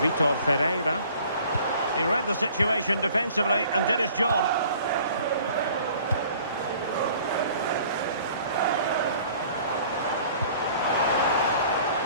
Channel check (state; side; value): inverted; both; correlation -0.52